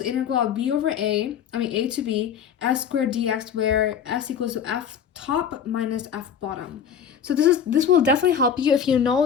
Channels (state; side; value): quieter; right; 7.9 dB